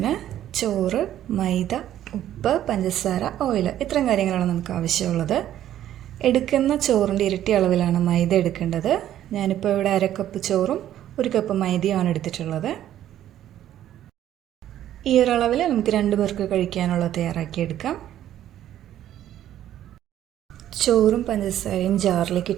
ചോറ്, മൈദ, ഉപ്പ്, പഞ്ചസാര, ഓയിൽ ഇത്രയും കാര്യങ്ങളാണ് നമുക്ക് ആവശ്യമുള്ളത്. എടുക്കുന്ന ചോറിൻ്റെ ഇരട്ടി അളവിലാണ് മൈദ എടുക്കേണ്ടത്. ഞാനിപ്പോൾ ഇവിടെ 1/2 കപ്പ് ചോറും 1 കപ്പ് മൈദയുമാണ് എടുത്തിട്ടുള്ളത്. ഈ ഒരു അളവിൽ നമുക്ക് 2 പേർക്ക് കഴിക്കാനുള്ളത് തയ്യാറാക്കിയെടുക്കാം. ചോറും പഞ്ചസാരയും ജാറിലേക്ക്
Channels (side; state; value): left; quieter; 11.9 dB